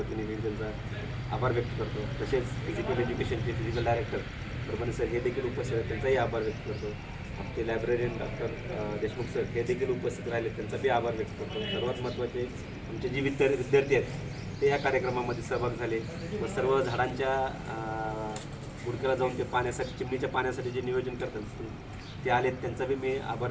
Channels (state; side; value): identical; both; correlation 1.00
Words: मी त्यांचा आभार व्यक्त करतो. तसेच फिजिकल एज्युकेशनचे फिजिकल डायरेक्टर परभणी सर हे देखील उपस्थित आहेत, त्यांचाही आभार व्यक्त करतो. आमचे लायब्ररीयन डॉक्टर देशमुख सर हे देखील उपस्थित राहिले, त्यांचाही आभार व्यक्त करतो. सर्वात महत्त्वाचे आमचे जे विद्यार्थी आहेत ते या कार्यक्रमामध्ये सहभाग झाले व सर्व झाडांच्या बुडक्याला जाऊन ते पाण्यासाठी, चिमणीच्या पाण्यासाठी जे नियोजन करतात ते आलेत, त्यांचा बी मी आभार